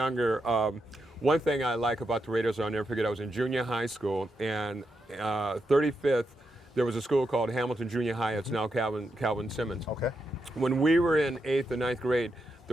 one thing I like about the Raiders, I'll never forget, I was in junior high school, and 35th, there was a school called Hamilton Junior High. It's now Calvin Simmons. Okay. When we were in 8th or 9th grade,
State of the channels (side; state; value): both; normal; correlation 0.84